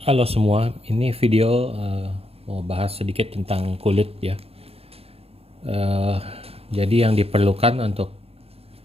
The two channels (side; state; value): left; late; 0.29 ms